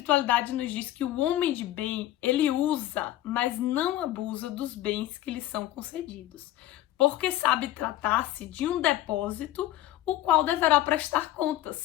nos diz que o homem de bem, ele usa, mas não abusa dos bens que lhe são concedidos, porque sabe tratar-se de um depósito, o qual deverá prestar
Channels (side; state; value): right; quieter; 14.1 dB